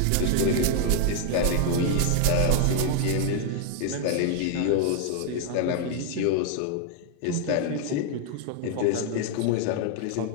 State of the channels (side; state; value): both; different; correlation 0.00